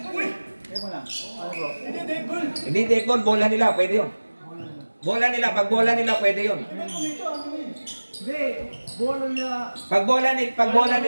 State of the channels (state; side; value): inverted; both; correlation -1.00